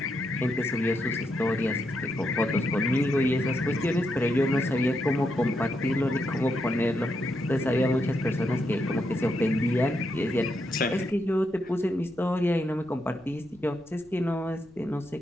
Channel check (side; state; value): left; noise; rumble, 29 dB below the sound